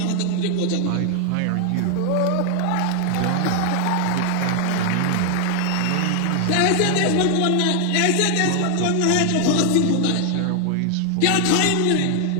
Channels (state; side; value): different; both; correlation 0.00